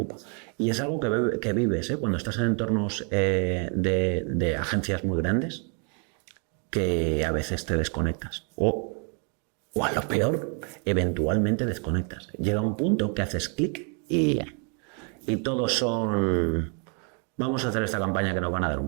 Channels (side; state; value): left; quieter; 39.4 dB